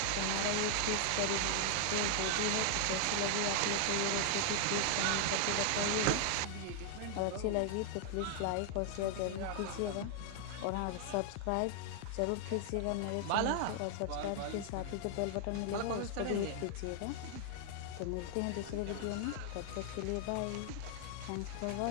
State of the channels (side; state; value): both; different; correlation 0.00